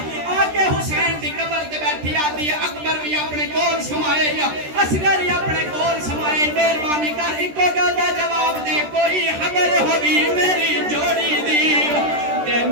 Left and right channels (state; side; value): late; left; 13 ms